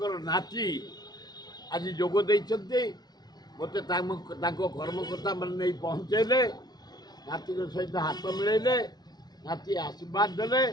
नाती आज जोग मत कर्मकर्ता मैंने नहीं पहुँचेले नाती सहित हाथ मिलैले नाती आशीर्वाद देले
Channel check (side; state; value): right; late; 0.19 ms